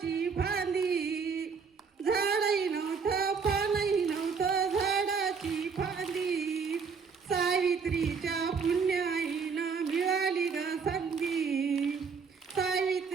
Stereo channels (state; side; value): quieter; left; 5.6 dB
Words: फांदी, झाडही नव्हतं पानही नव्हतं झाडाची फांदी. सावित्रीच्या पुण्याईनं मिळाली ग संधी,